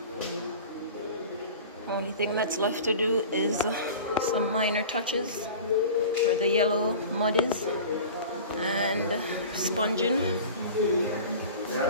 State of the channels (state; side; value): inverted; both; correlation -0.38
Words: Only thing that's left to do is some minor touches where the yellow mud is and sponging,